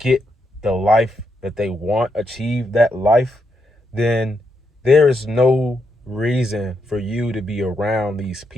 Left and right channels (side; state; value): both; normal; correlation 0.81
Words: the life that they want, achieve that life, then there is no reason for you to be around these